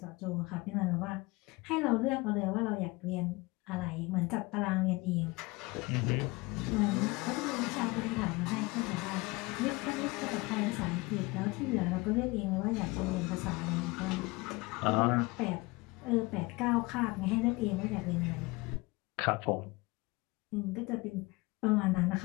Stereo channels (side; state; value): right; quieter; 23.8 dB